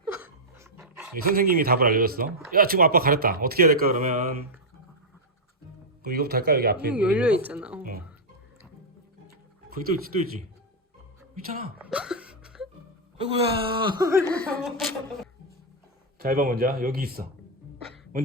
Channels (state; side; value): normal; both; correlation -0.04